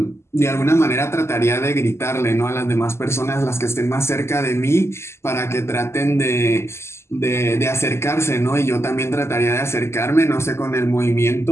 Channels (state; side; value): late; right; 0.13 ms